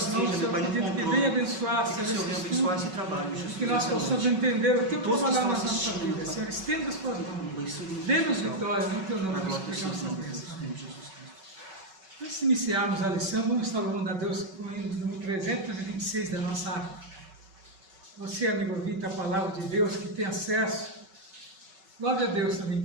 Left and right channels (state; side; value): late; left; 5.3 ms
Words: mãos, esteja, meu Pai, no pedindo que controle. venha abençoar, Que o Senhor, Senhor venha esse abençoar estudo, esse trabalho, Jesus. que nós nessa possamos noite. entender o Teu Todos que trabalhar na estão nossa assistindo, vida. Pai. Senhor, estenda as Tuas mãos. Abençoe o Dê-nos Senhor. vitória, no Teu nome, Na nós glória do suplicamos Senhor, a bênção. em Jesus Cristo. Antes de iniciarmos a lição, vamos estar louvando a Deus com o hino número 326 da nossa arte. Você, amigo ouvinte, a palavra de Deus, que tem acesso, louve a Deus também